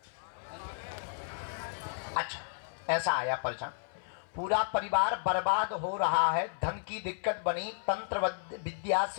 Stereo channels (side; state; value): right; silent; 56 dB below the other